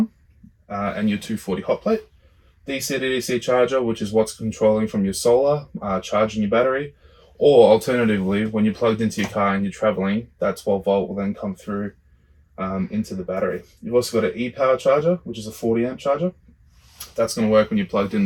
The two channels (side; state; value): both; identical; correlation 1.00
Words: and your 240 hot plate. DC to DC charger, which is what's controlling from your solar, charging your battery. Or alternatively, when you're plugged into your car and you're traveling, that 12 volt will then come through into the battery. You've also got an e-power charger, which is a 40 amp charger. That's going to work when you're plugged in